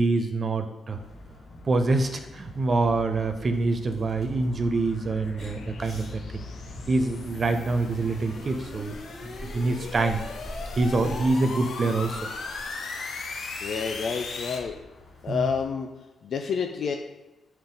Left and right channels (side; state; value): both; normal; correlation 0.83